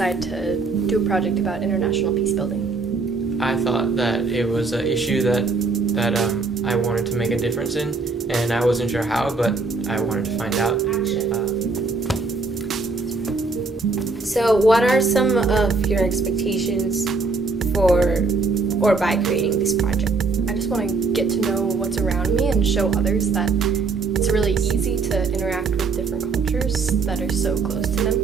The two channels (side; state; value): left; quieter; 4.1 dB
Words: to do a project about international peace building? I thought that it was an issue that I wanted to make a difference in, and I wasn't sure how, but I wanted to find out. So what are some of your expectations for or by creating this project? I just want to get to know what's around me and show others that it's really easy to interact with different cultures that are so close to them.